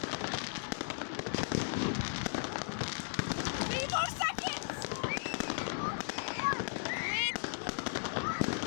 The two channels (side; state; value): right; silent; digital silence